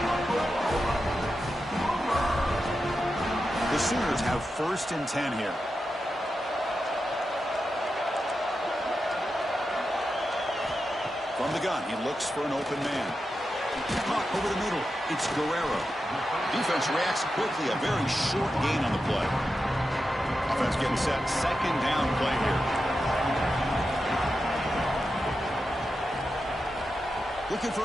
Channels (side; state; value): both; normal; correlation 0.90